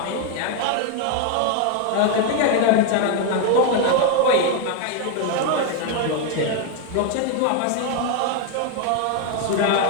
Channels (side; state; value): both; different; correlation 0.01